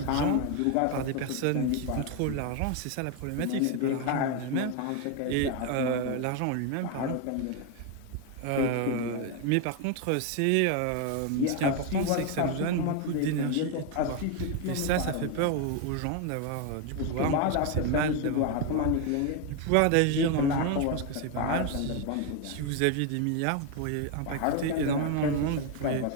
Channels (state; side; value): different; both; correlation 0.01